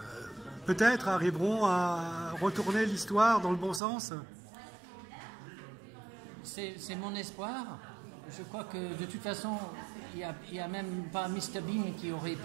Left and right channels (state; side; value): drops out; left; at 3.8 s